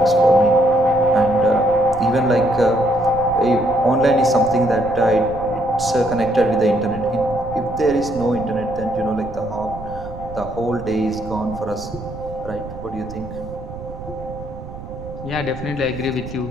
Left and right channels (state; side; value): noise; right; rumble, 13 dB below the sound